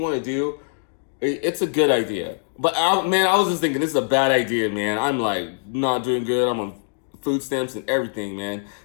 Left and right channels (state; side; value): silent; right; digital silence